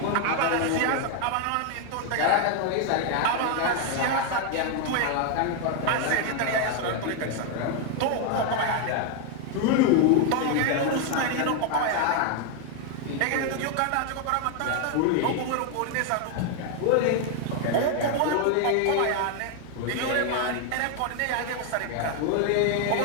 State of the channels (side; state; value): both; different; correlation 0.01